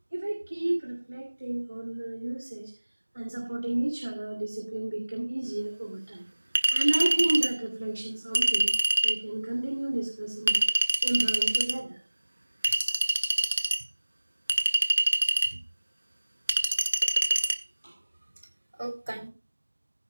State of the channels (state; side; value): inverted; both; correlation -1.00